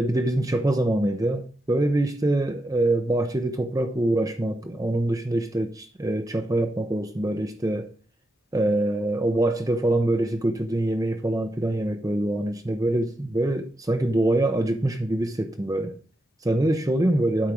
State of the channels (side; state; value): both; normal; correlation 0.85